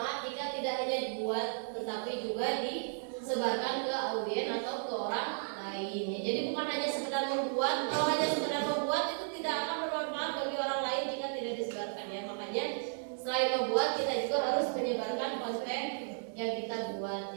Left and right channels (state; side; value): silent; left; 55 dB below the other